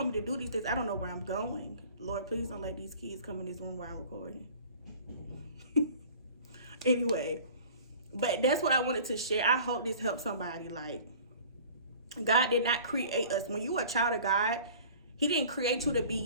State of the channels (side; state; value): both; inverted; correlation -0.46